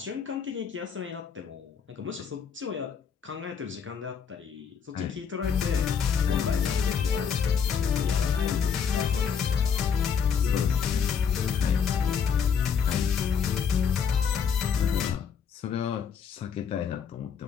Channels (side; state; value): right; quieter; 7.0 dB